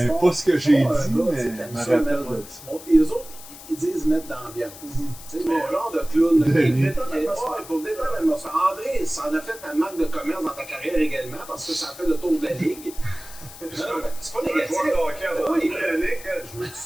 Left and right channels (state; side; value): noise; left; hiss, 16 dB below the sound